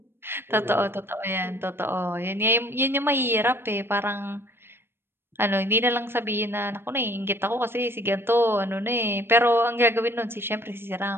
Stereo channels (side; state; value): left; late; 0.11 ms